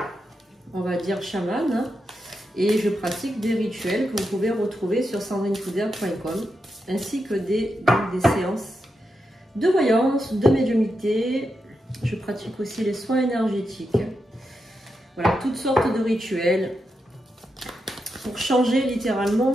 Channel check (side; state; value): both; normal; correlation 0.86